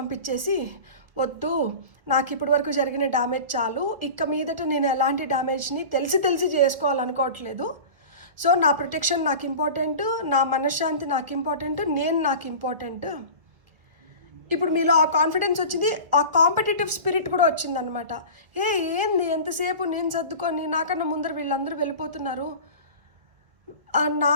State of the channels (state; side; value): late; left; 1.3 ms